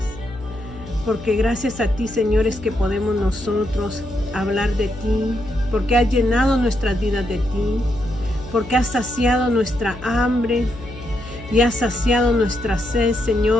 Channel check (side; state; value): left; noise; hum, 15 dB below the sound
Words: porque gracias a ti, Señor, es que podemos nosotros hablar de ti, porque has llenado nuestras vidas de ti, porque has saciado nuestra hambre y has saciado nuestra sed,